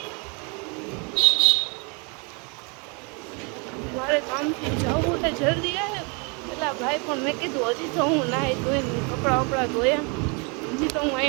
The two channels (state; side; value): quieter; left; 33.1 dB